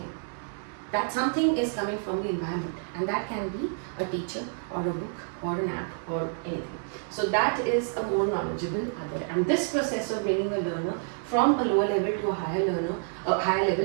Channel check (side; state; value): left; silent; digital silence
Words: That something is coming from the environment, and that can be a teacher or a book or an app or anything. So that is a more knowledgeable other, and this process of bringing a learner from a lower level to a higher